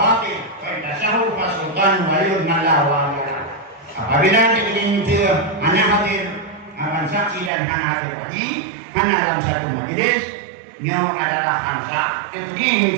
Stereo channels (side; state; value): left; drops out; at 7.5 s